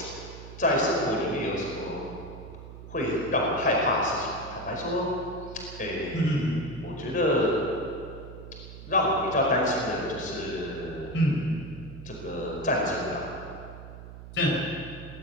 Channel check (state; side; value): noise; right; hum, 13 dB below the sound